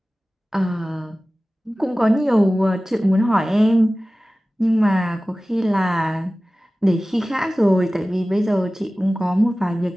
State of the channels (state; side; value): normal; both; correlation 0.97